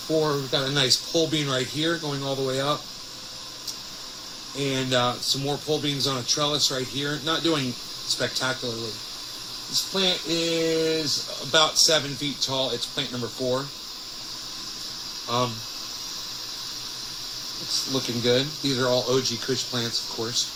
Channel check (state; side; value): identical; both; correlation 1.00